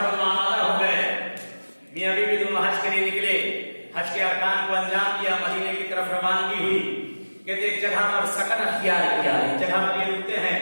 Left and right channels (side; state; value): both; inverted; correlation -1.00